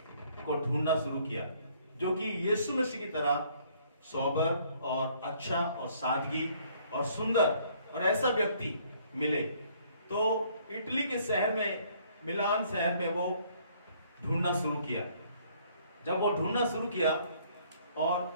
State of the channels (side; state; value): both; inverted; correlation -0.62